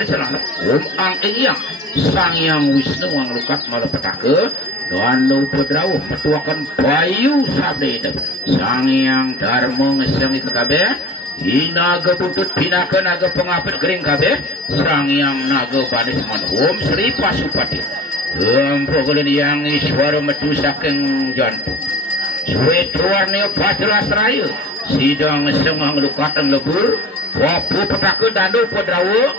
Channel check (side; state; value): both; normal; correlation 0.41